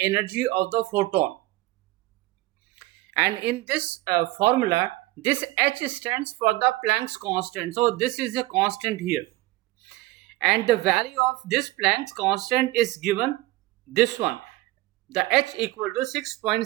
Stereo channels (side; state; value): left; quieter; 18.8 dB